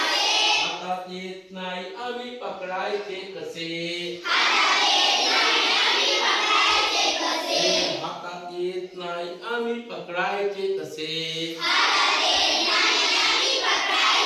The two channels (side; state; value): both; identical; correlation 1.00